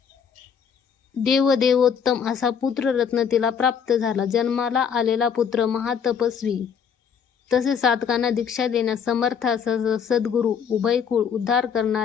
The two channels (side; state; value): right; quieter; 7.2 dB